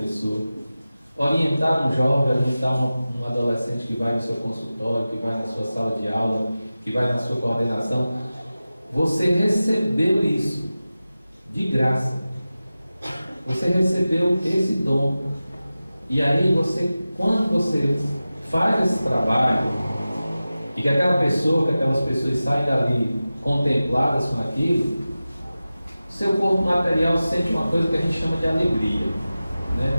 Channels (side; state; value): both; inverted; correlation -0.95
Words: Orientar um jovem, orientar um adolescente que vai no seu consultório, que vai na sua sala de aula, que vai na sua coordenação. Você recebeu isso de graça. Você recebeu esse dom. E aí quando você faz esse trabalho, e que aquelas pessoas saem dali contempladas com aquilo, seu corpo material sente uma coisa que a gente chama de alegria,